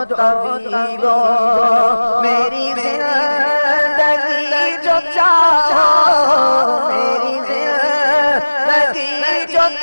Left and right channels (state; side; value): inverted; both; correlation -1.00